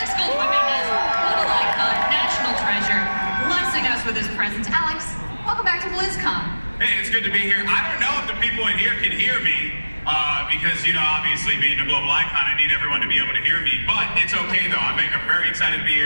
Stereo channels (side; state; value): both; inverted; correlation -1.00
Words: Goldwyn-Mendez, little icon, national treasure, blessing us with his presence. Alex, welcome back to BlizzCon. Hey, it's good to be here. I don't know if the people in here can hear me because, you know, obviously being a global icon, I need everyone to be able to hear me. But it's okay, though. I'm very excited to be